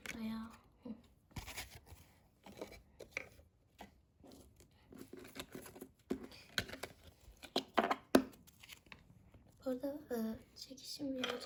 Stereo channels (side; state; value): both; identical; correlation 1.00